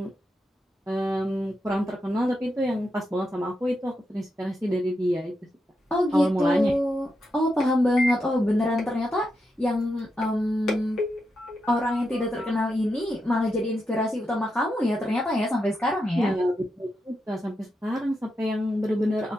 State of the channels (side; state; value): both; normal; correlation 0.86